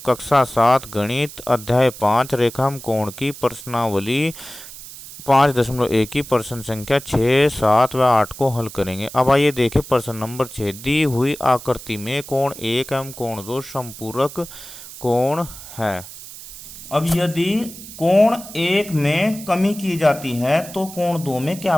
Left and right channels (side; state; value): right; noise; hiss, 15 dB below the sound